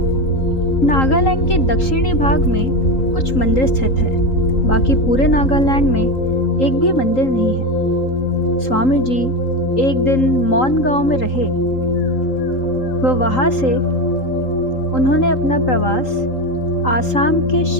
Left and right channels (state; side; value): late; right; 3.8 ms